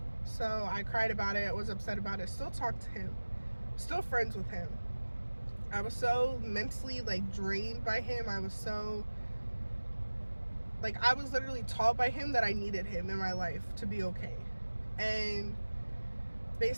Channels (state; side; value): inverted; both; correlation -1.00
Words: So I cried about it. I was upset about it. Still talked to him. Still friends with him. I was so mentally like drained by him. I was so like, I was literally taught by him that I needed him in my life to be okay. And